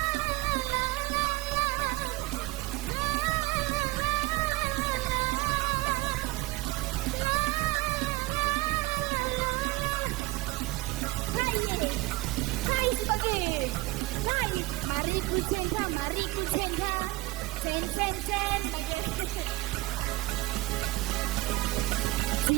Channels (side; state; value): left; quieter; 20.0 dB